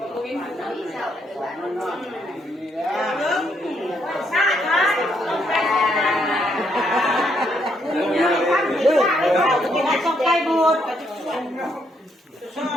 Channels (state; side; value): normal; both; correlation 0.74